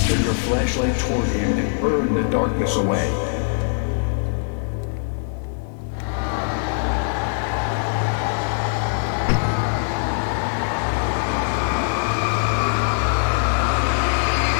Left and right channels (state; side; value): silent; right; 59 dB below the other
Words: Turn your flashlight toward him and burn the darkness away.